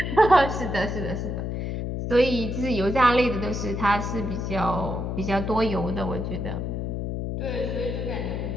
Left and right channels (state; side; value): noise; left; hum, 3 dB below the sound